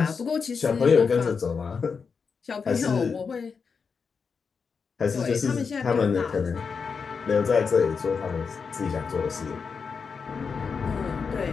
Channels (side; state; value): right; quieter; 5.5 dB